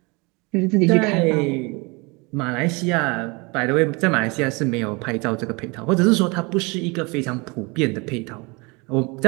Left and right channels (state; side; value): quieter; left; 27.8 dB